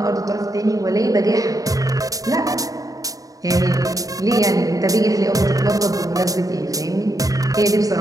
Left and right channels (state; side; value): late; left; 0.17 ms